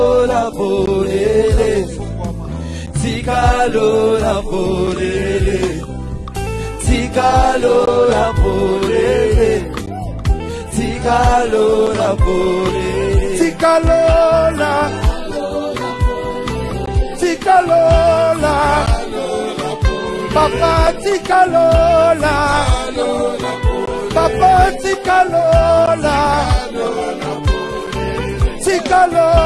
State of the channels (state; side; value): identical; both; correlation 1.00